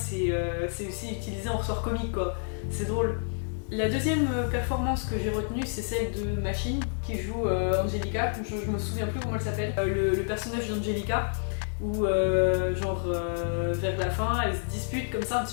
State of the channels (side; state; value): right; silent; digital silence